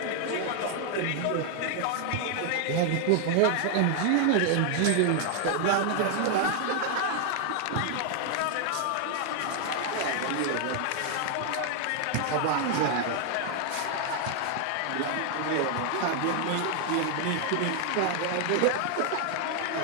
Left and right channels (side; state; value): both; different; correlation 0.00